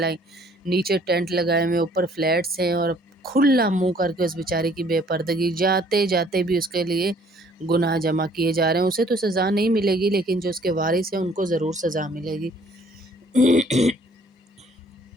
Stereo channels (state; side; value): normal; both; correlation 0.59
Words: نیچے ٹینٹ لگائے ہوئے، اوپر فلیٹس ہیں، اور کھلا منہ کر کے اس بیچاری کی بے پردگی، جاتے جاتے بھی اس کے لیے گناہ جمع کیے جا رہے ہیں۔ اسے تو سزا نہیں ملے گی، لیکن جو اس کے وارث ہیں ان کو ضرور سزا ملے گی۔